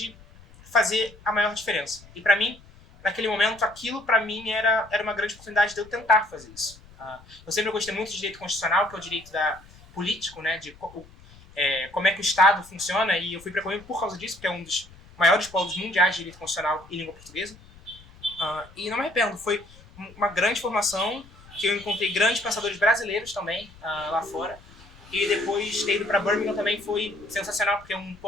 fazer a maior diferença. E para mim, naquele momento, aquilo para mim era uma grande oportunidade de eu tentar fazer isso. Eu sempre gostei muito de direito constitucional, que é o direito político, né, de como é que o Estado funciona, e eu fui para Coimbra por causa disso, porque é um dos maiores polos mundiais de direito constitucional e língua portuguesa. E não me arrependo, foi uma grande formação, que eu encontrei grandes pensadores brasileiros também lá fora. E depois ter ido para Birmingham também foi sensacional, porque é um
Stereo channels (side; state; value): left; noise; rumble, 23 dB below the sound